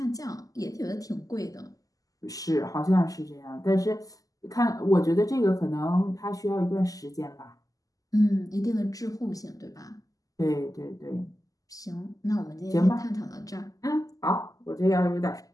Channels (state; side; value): late; right; 0.17 ms